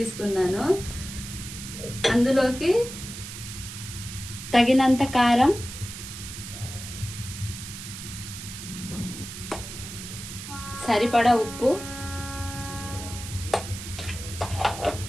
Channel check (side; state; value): right; noise; hiss, 10 dB below the sound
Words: అందులోకి తగినంత కారం, సరిపడా ఉప్పు,